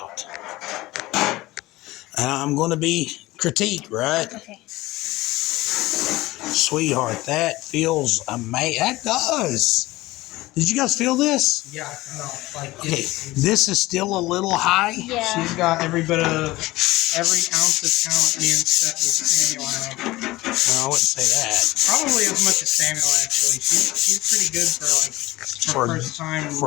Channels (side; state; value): right; quieter; 18.9 dB